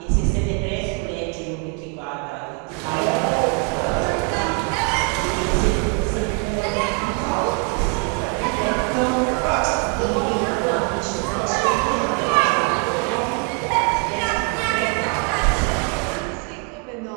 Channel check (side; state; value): left; quieter; 38.3 dB